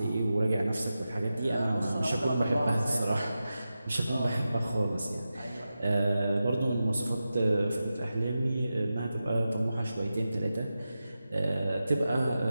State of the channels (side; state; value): both; inverted; correlation -0.92